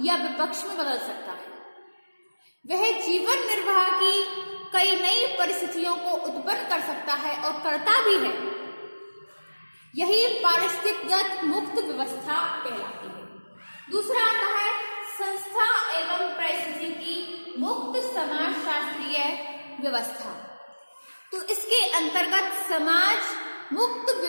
या विपक्ष में बदल सकता है। वह जीवन निर्वाह की कई नई परिस्थितियों को उत्पन्न कर सकता है और करता भी है। यही पारिस्थितिकगत मुक्त व्यवस्था कहलाती है। दूसरा आता है संस्था एवं परिस्थिति की मुक्त समाजशास्त्रीय व्यवस्था। तो इसके अंतर्गत समाज मुक्त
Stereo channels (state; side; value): inverted; both; correlation -1.00